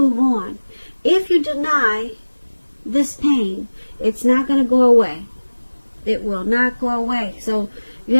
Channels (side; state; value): both; inverted; correlation -1.00